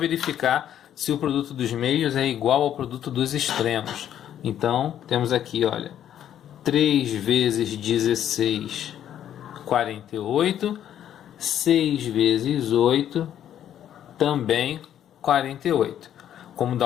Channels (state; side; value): quieter; right; 10.5 dB